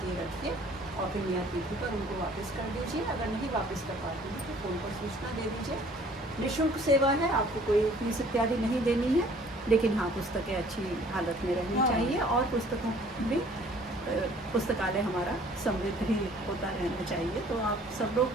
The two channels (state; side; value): normal; both; correlation 0.55